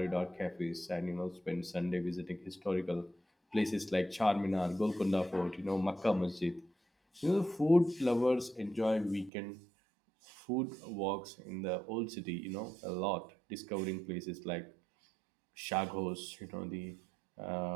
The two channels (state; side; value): drops out; left; at 9.3 s